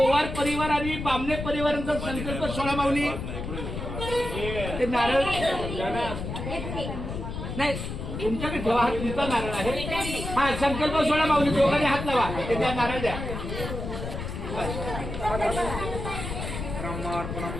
परिवार आणि बामणे परिवारांचा संकल्प सोळा माऊली. ते नारळ नाही तुमच्याकडे ठेवा, हा तुमचा नारळ आहे. हा संकल्प सोळा माऊली, दोघांनी हात लावा, ते द्या, नारळ द्या. ब्रह्मार्पणं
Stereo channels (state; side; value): noise; left; rumble, 6 dB below the sound